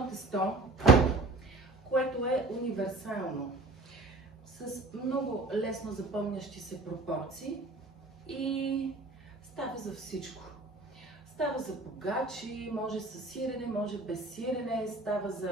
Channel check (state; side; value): quieter; left; 3.1 dB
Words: тесто, което е универсално, с много лесно запомнящи се пропорции и става за всичко. Става за погачи, може с сирене, може без сирене, става